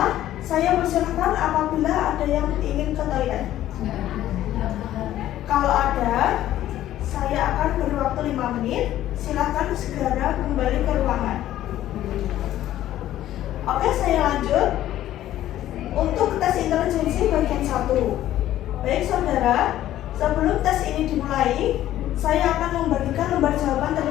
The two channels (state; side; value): quieter; right; 13.1 dB